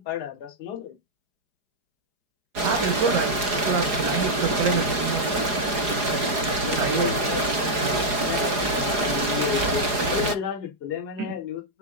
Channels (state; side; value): late; left; 4.8 ms